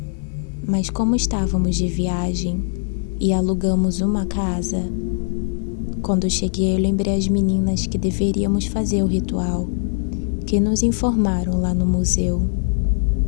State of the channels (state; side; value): silent; right; 65 dB below the other